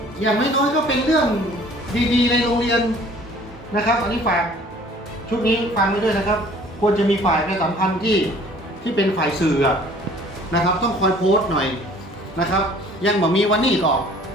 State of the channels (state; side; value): normal; both; correlation 0.53